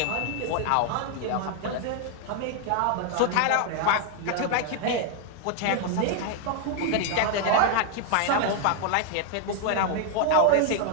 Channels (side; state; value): both; different; correlation 0.00